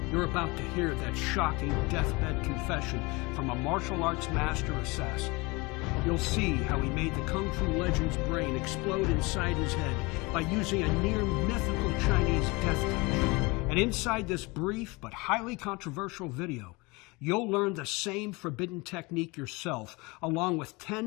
You're about to hear that shocking deathbed confession from a martial arts master assassin. You'll see how he made the Kung Fu legend's brain explode inside his head by using a near-mythical Chinese death touch. And inside this brief but highly controversial video, you'll learn the same forbidden technique yourself, along with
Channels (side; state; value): right; quieter; 25.3 dB